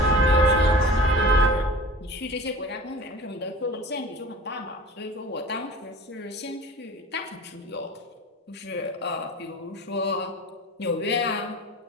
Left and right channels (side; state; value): both; normal; correlation 0.39